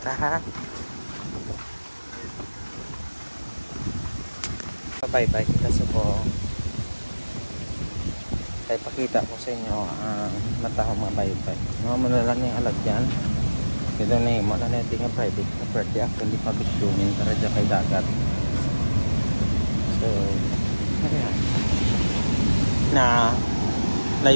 ha. Pabaybay kita sa po. Kaya pakita ko sa inyo ang matahong mga baybay. Mga malalang yung alagyan. Ito na yung mga natin nga private property. Actually, pabitumin para dyan kay dagat. So, ayan. Na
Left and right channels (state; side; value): inverted; both; correlation -1.00